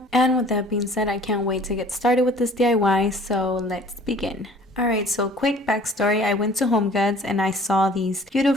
And with that being said, I can't wait to get started with this DIY, so let's begin. Alright, so quick backstory. I went to Home Goods and I saw these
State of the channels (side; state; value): both; normal; correlation 0.51